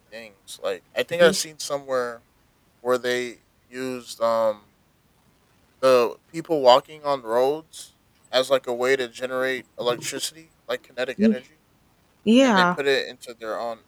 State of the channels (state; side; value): identical; both; correlation 1.00